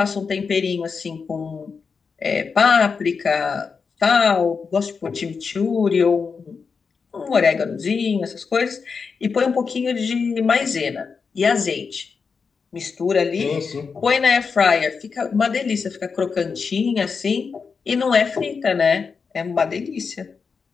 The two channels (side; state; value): right; quieter; 5.4 dB